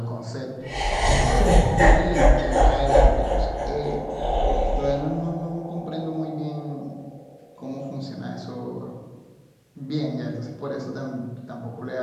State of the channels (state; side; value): identical; both; correlation 1.00